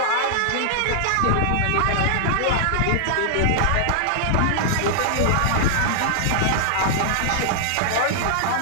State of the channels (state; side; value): different; both; correlation -0.01